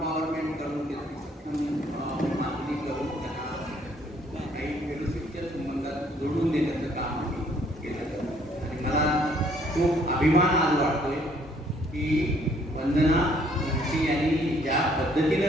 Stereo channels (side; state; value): both; normal; correlation 0.64